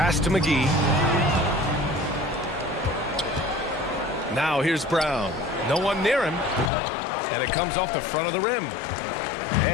to McGee. Now here's Brown. No one near him. And it comes off the front of the rim.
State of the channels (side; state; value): right; drops out; at 6.7 s